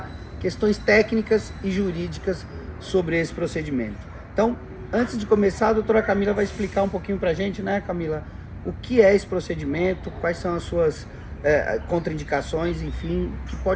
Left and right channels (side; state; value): both; identical; correlation 1.00